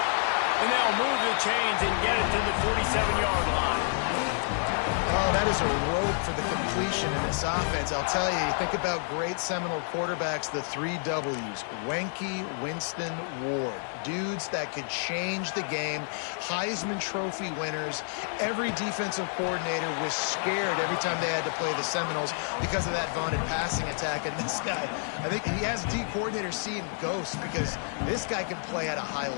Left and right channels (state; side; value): silent; right; 59 dB below the other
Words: And they'll move the chains and get it to the 47-yard line. Oh, that is a rope for the completion in this offense. I'll tell you, you think about great Seminole quarterbacks, the 3 W's, Wenke, Winston, Ward. Dudes that could change the game, Heisman Trophy winners. Every defensive coordinator was scared every time they had to play the Seminoles because of that vaunted passing attack. And this guy, I think he has D coordinators seeing ghosts because this guy can play at a high